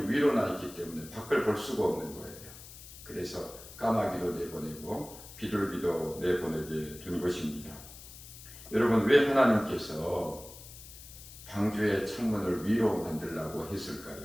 위로 나 있기 때문에 밖을 볼 수가 없는 거예요. 그래서 까마귀도 내보내고 비둘기도 내보내게 된 것입니다. 여러분, 왜 하나님께서 방주의 창문을 위로 만들라고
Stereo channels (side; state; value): left; noise; hiss, 16 dB below the sound